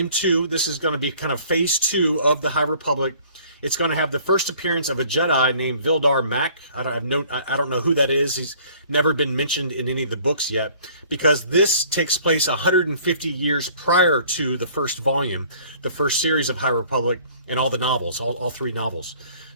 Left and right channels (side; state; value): both; inverted; correlation -0.54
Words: 2. This is going to be kind of phase 2 of the High Republic. It's going to have the first appearance of a Jedi named Vildar Mack. I don't know who that is. He's never been mentioned in any of the books yet, because this takes place 150 years prior to the first volume, the first series of High Republic, and all the novels, all 3 novels.